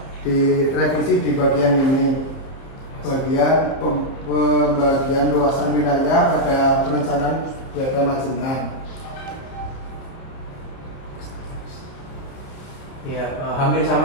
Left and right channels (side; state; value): right; late; 30 ms